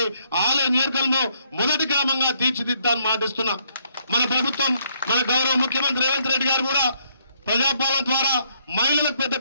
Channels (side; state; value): both; inverted; correlation -0.71